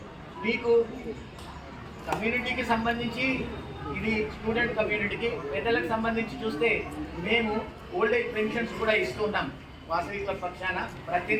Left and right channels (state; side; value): identical; both; correlation 1.00